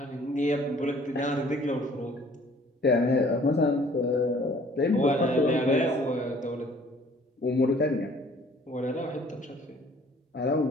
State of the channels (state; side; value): normal; both; correlation 0.56